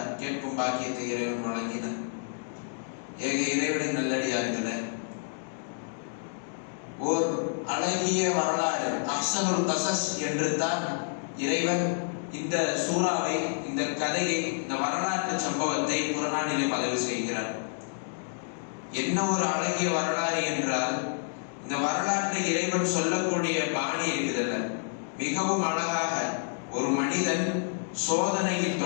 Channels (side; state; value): right; silent; digital silence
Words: கேட்கும் பாக்கியத்தை இறைவன் வழங்கினார். ஏக இறைவனின் நல்லடியார்களே, ஓர் அழகிய வரலாறு, அஹ்ஸனுல் கஸஸ் என்று தான் இறைவன் இந்த சூறாவை, இந்த கதையை, இந்த வரலாற்று சம்பவத்தை குர்ஆனிலே பதிவு செய்கிறார். என்ன ஒரு அழகிய வரலாறு என்றால், இந்த வரலாற்றை இறைவன் சொல்லக்கூடிய பாணி இருக்குதல்ல, மிகவும் அழகாக ஒரு மனிதன் சோதனையில்